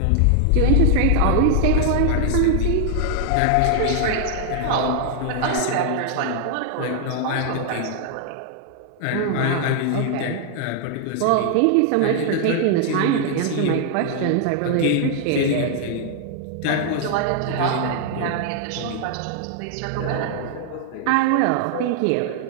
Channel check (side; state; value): both; different; correlation 0.00